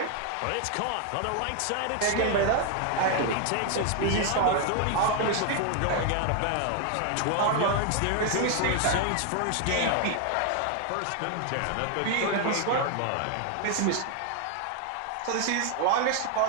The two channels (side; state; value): both; different; correlation 0.00